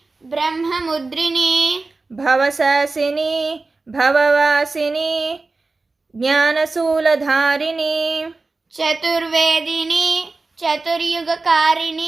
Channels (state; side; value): quieter; left; 3.6 dB